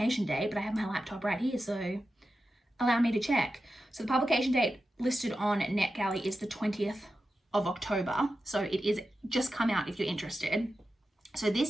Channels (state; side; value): normal; both; correlation 0.91